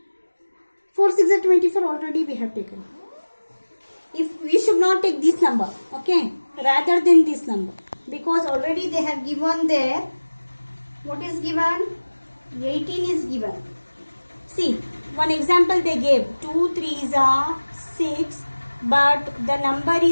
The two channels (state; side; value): inverted; both; correlation -1.00